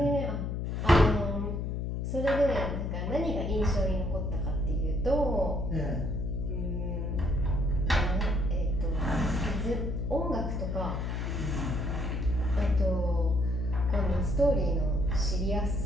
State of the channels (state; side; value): noise; left; hum, 2 dB below the sound